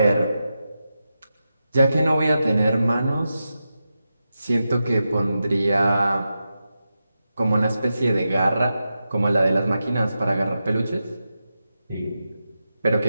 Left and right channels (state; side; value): inverted; both; correlation -0.90